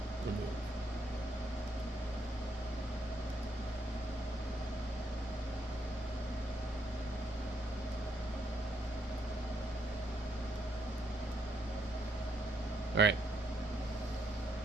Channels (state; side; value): normal; both; correlation 0.75